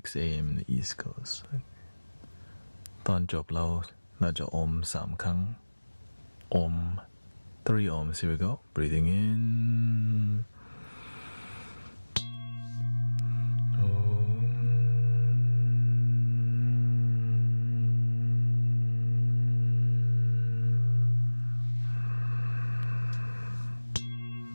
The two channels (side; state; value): both; inverted; correlation -1.00